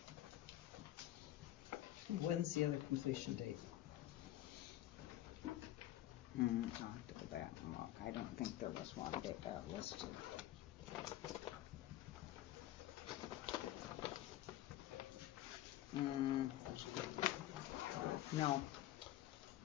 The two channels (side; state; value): right; quieter; 14.3 dB